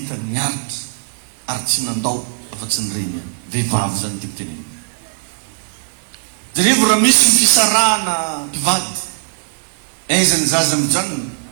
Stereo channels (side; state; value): left; silent; 58 dB below the other